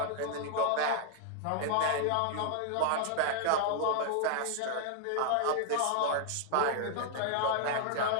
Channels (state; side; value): different; both; correlation -0.01